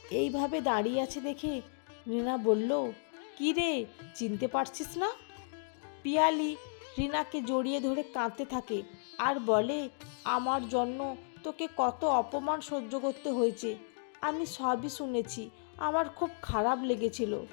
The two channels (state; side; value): silent; right; digital silence